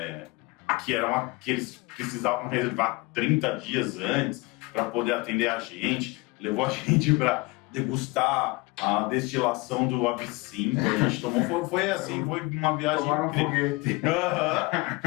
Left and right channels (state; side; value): quieter; right; 24.4 dB